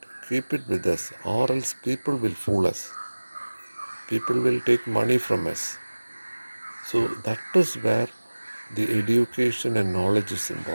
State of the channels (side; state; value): both; inverted; correlation -1.00